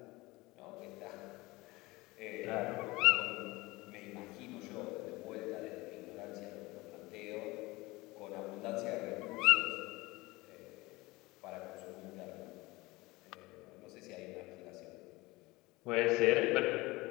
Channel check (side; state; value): right; quieter; 21.5 dB